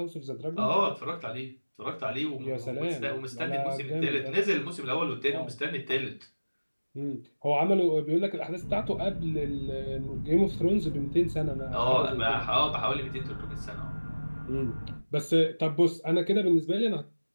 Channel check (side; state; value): both; inverted; correlation -1.00